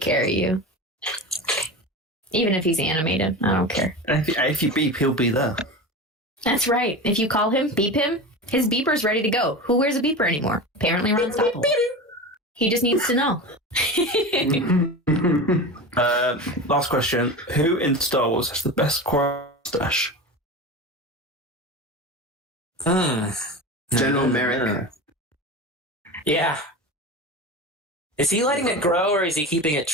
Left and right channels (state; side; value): normal; both; correlation 0.27